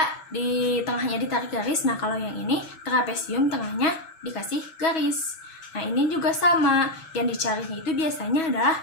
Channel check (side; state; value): right; late; 7.2 ms